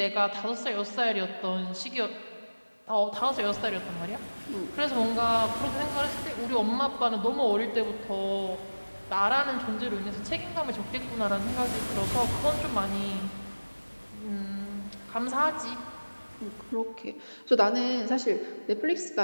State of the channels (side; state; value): both; inverted; correlation -1.00